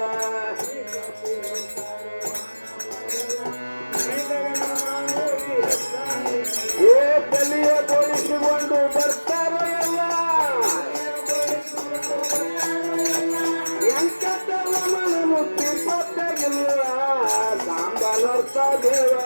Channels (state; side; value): inverted; both; correlation -1.00